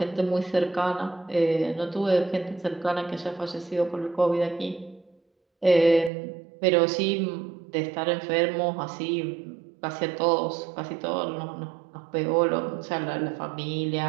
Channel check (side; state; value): left; drops out; at 6.1 s